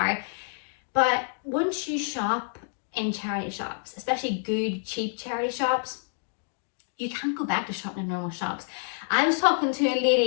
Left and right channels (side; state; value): right; silent; digital silence